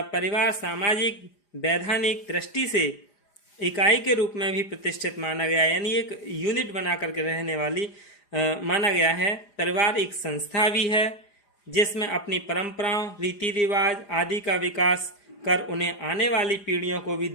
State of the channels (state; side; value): late; right; 4.9 ms